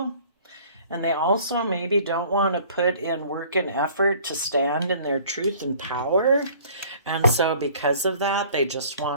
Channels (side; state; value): both; inverted; correlation -0.52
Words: And they also maybe don't want to put in work and effort to stand in their truth and power. And so because of that, they just